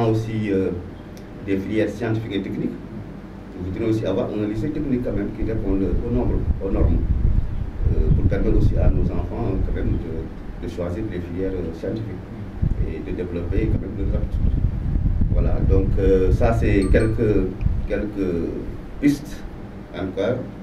aussi des filières scientifiques et techniques, Je voudrais aussi avoir un lycée technique quand même qui réponde aux normes. Pour permettre aussi à nos enfants quand même de choisir les filières scientifiques et de développer quand même leurs aptitudes. Voilà, donc ça c'est quelques pistes encore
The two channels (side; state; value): both; identical; correlation 1.00